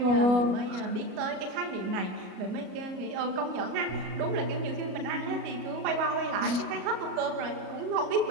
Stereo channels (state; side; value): late; left; 37 ms